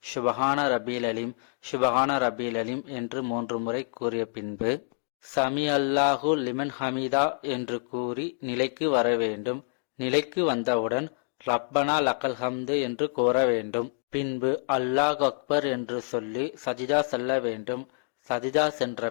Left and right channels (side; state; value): right; silent; digital silence